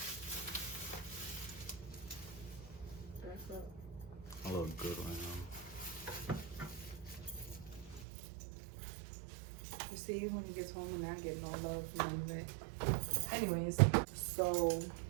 I look good right now. You see, when he gets home and I get no love from music. Anyways, so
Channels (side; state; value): left; drops out; at 8.1 s